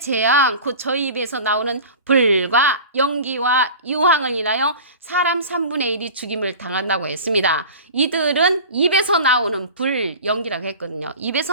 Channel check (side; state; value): both; inverted; correlation -0.36